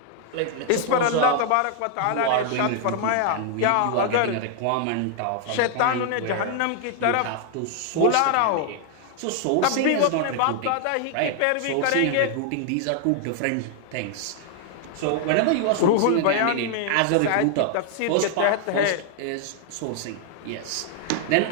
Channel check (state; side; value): different; both; correlation 0.00